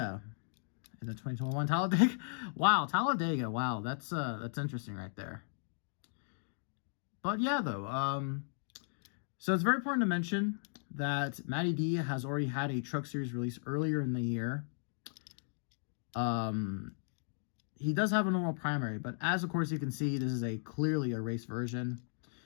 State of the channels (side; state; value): right; silent; digital silence